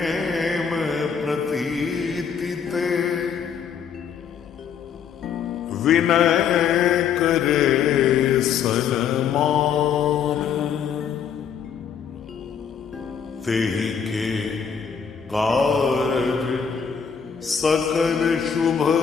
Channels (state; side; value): quieter; right; 7.3 dB